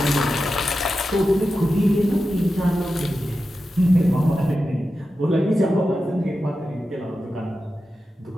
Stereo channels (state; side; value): normal; both; correlation 0.91